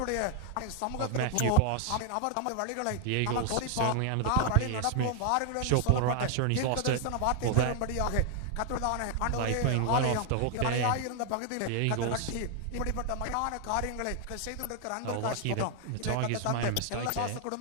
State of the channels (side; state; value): both; different; correlation 0.00